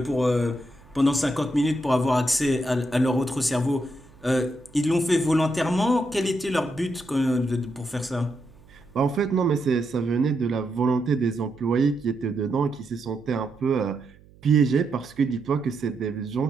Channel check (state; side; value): noise; right; hum, 26 dB below the sound